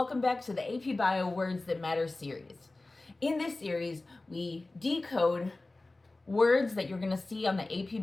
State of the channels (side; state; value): right; quieter; 3.0 dB